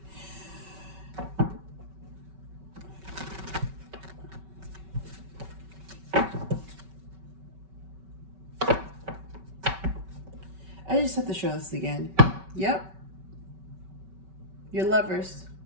I just have to show this again. Yep. You're lovers.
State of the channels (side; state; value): left; late; 5.2 ms